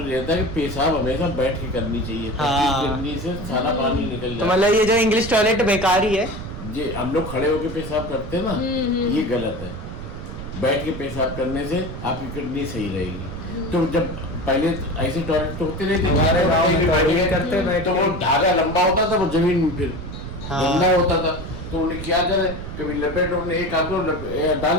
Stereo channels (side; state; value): right; noise; rumble, 9 dB below the sound